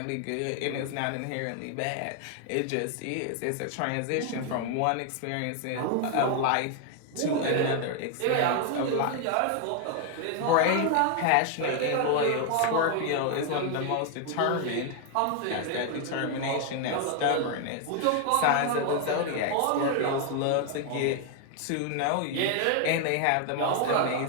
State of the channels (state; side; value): different; both; correlation 0.00